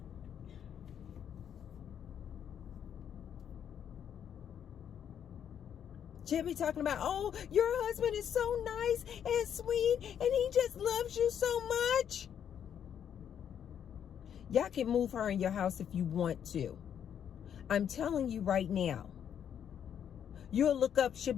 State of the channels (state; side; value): quieter; right; 8.8 dB